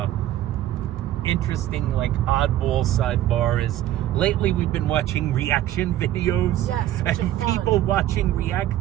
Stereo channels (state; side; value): quieter; left; 13.1 dB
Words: Interesting, like oddball sidebar is lately we've been watching reaction videos. Yes, which and are fun. people watching